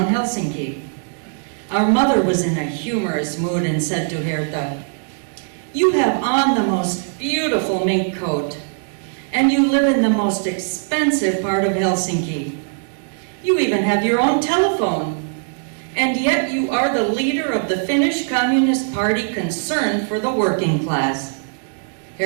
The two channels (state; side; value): silent; left; digital silence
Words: Helsinki. Our mother was in a humorous mood and said to Herta, "You have on the most beautiful mink coat, and you live in the most expensive part of Helsinki. You even have your own telephone, and yet you are the leader of the Finnish Communist Party concerned for the working class."